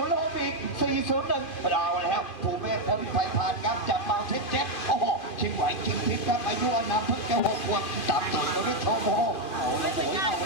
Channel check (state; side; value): late; right; 2.4 ms